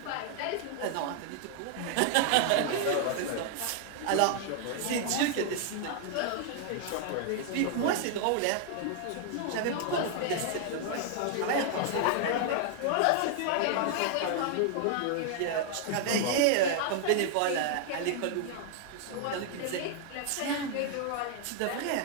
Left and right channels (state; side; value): different; both; correlation 0.00